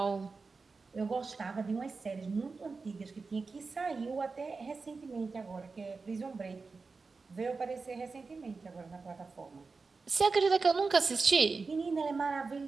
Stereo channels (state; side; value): quieter; left; 4.3 dB